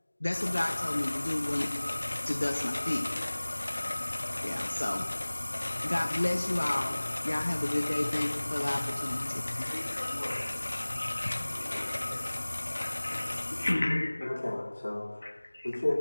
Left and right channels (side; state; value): both; inverted; correlation -1.00